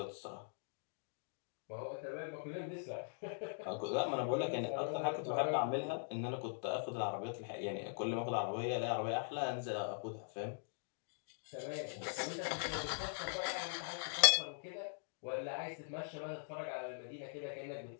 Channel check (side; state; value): right; silent; digital silence